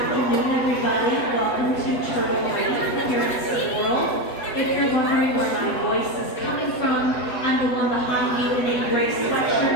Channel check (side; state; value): right; late; 8.0 ms